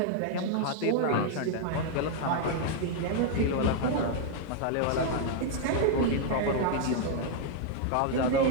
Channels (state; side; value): different; both; correlation -0.01